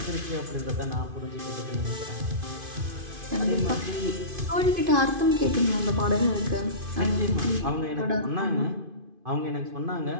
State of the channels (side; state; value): left; late; 2.5 ms